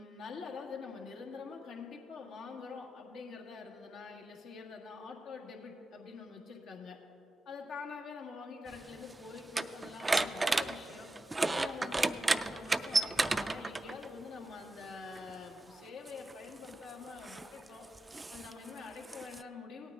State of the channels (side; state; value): both; normal; correlation 0.91